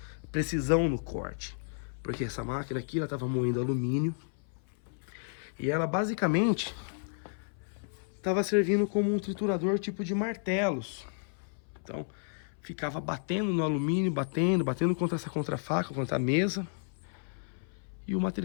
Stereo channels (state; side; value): silent; right; 56 dB below the other